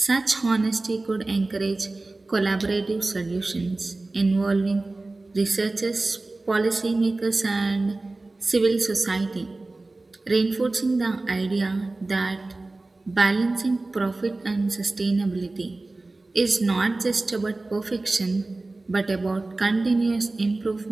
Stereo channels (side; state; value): left; quieter; 3.1 dB